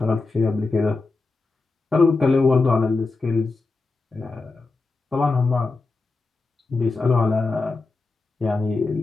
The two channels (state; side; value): quieter; right; 3.7 dB